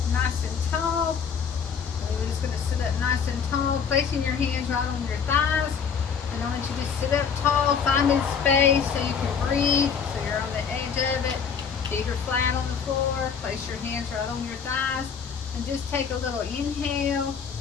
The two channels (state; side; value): quieter; right; 6.6 dB